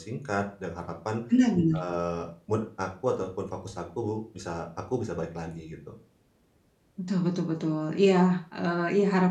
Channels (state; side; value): identical; both; correlation 1.00